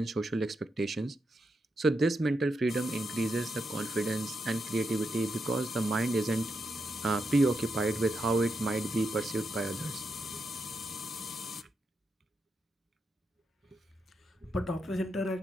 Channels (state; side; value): normal; both; correlation 0.84